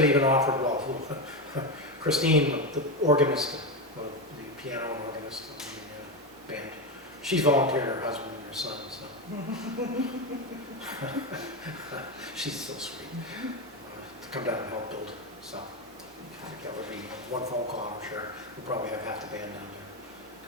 even offered, well, Christine, the organist, the piano and organist of the band, she's volunteered her husband and her son, so. She's so sweet, to come down and help build, so. I think that would be one phone call, I'm sure, we'll probably have half the band down there,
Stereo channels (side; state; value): both; normal; correlation 0.13